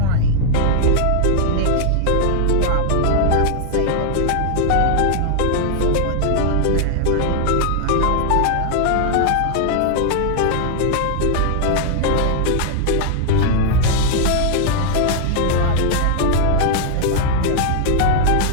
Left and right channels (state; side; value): different; both; correlation -0.01